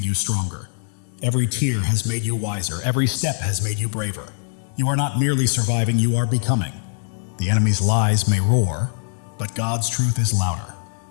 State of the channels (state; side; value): silent; right; digital silence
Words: you stronger. Every tear has made you wiser. Every step has made you braver. You are not merely surviving, you are becoming. The enemy's lies may roar, but God's truth is louder.